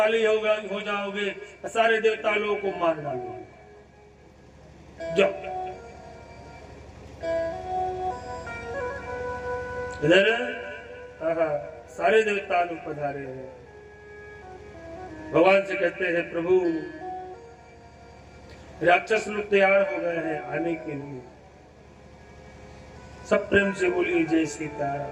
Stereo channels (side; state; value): both; identical; correlation 1.00